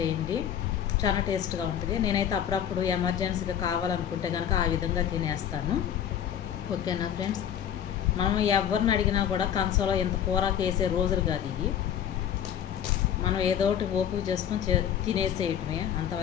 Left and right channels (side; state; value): right; quieter; 9.5 dB